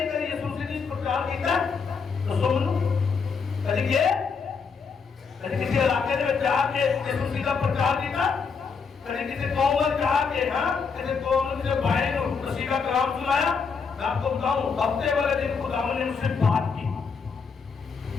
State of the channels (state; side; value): quieter; right; 5.5 dB